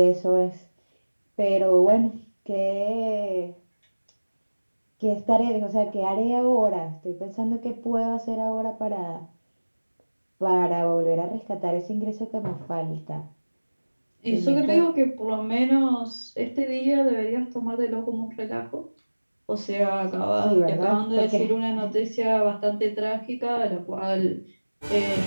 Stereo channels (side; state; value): both; inverted; correlation -1.00